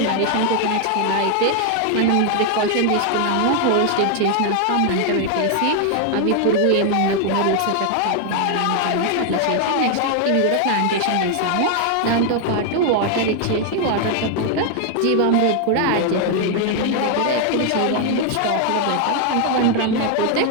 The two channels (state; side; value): different; both; correlation 0.00